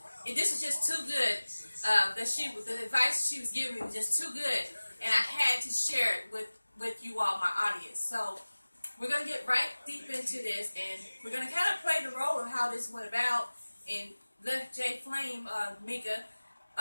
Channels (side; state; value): both; inverted; correlation -1.00